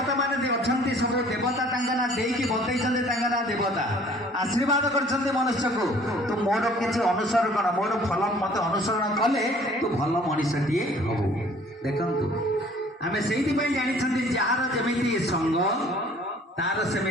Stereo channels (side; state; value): both; normal; correlation 0.54